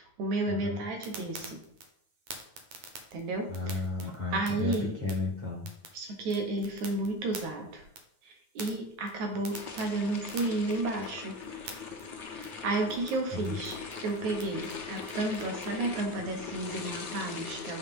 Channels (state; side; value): late; left; 9.3 ms